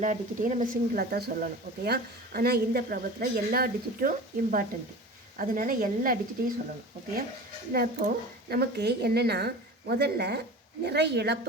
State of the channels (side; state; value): both; normal; correlation 0.36